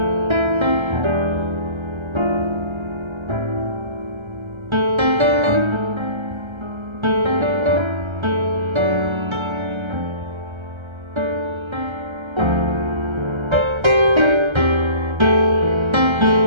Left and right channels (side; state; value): left; late; 1.3 ms